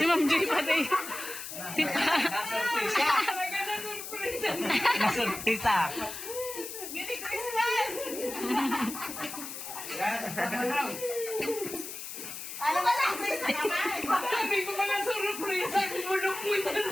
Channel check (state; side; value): noise; left; hiss, 9 dB below the sound